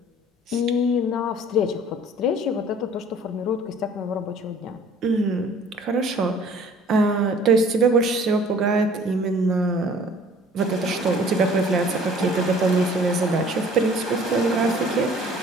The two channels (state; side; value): normal; both; correlation 0.52